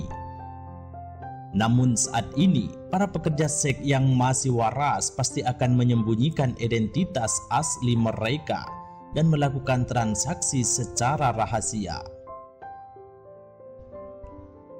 Namun saat ini, para pekerja seks yang masih waras pasti akan menyembunyikan identitas asli mereka dan melakukan transaksi secara rahasia.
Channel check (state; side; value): identical; both; correlation 1.00